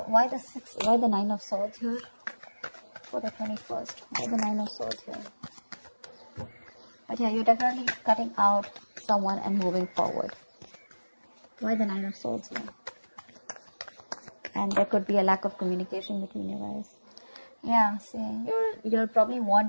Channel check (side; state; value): both; inverted; correlation -1.00